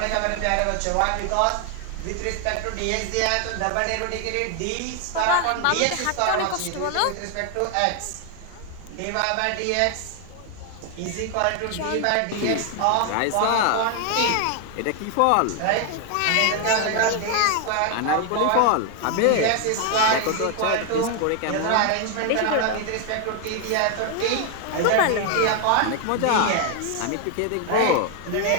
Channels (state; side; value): different; both; correlation 0.00